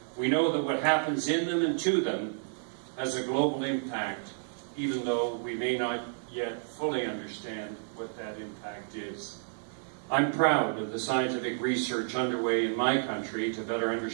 We know that what happens in them and to them has a global impact, even though we may not yet fully understand what that impact is. I'm proud of the scientific research underway in my country to better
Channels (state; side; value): silent; left; 57 dB below the other